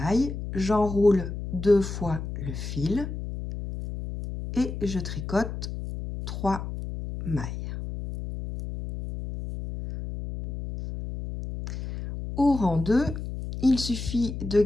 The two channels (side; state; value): left; noise; hum, 7 dB below the sound